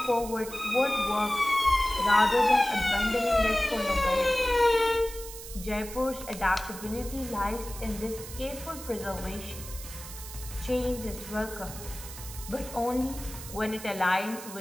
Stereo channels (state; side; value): noise; right; hiss, 12 dB below the sound